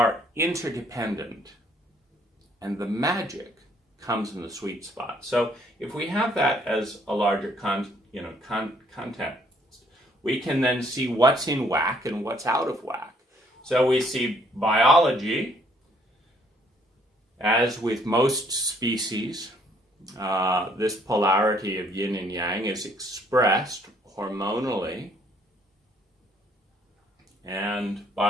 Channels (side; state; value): both; normal; correlation 0.64